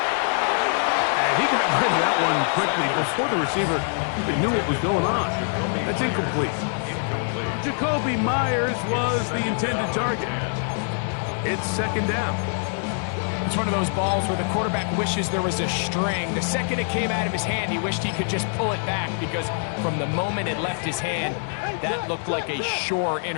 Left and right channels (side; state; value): right; silent; 57 dB below the other